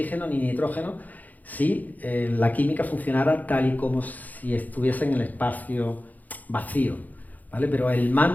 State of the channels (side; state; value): right; late; 0.081 ms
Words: ni nitrógeno si la química funcionara tal y como si estuviese en el espacio vacío, ¿vale? Pero el